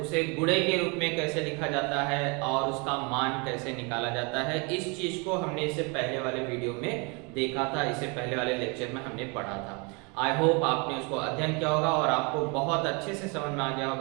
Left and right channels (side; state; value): left; quieter; 31.2 dB